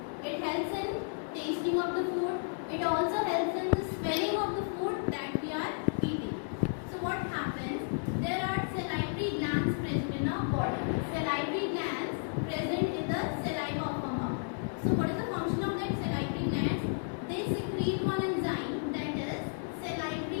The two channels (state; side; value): silent; right; digital silence